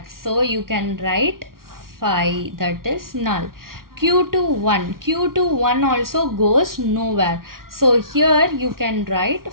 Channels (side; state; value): left; late; 0.92 ms